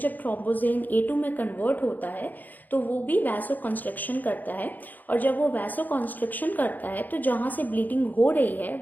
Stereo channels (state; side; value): late; right; 0.084 ms